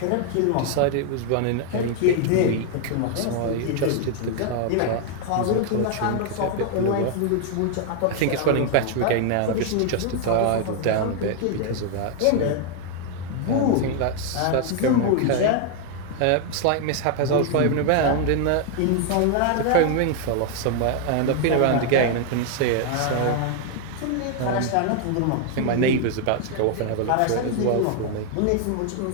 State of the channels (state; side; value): different; both; correlation 0.00